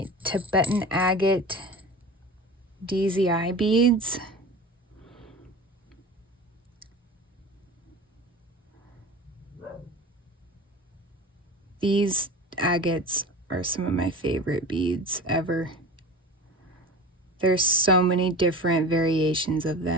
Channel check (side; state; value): both; normal; correlation 0.34